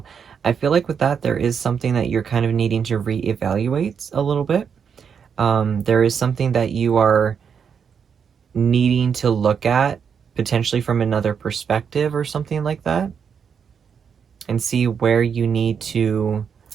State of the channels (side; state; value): left; quieter; 6.9 dB